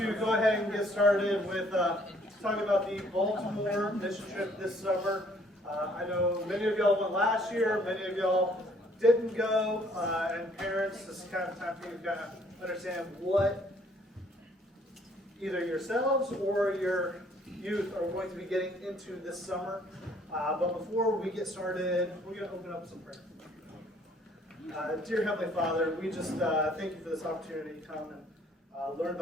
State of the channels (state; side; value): normal; both; correlation 0.61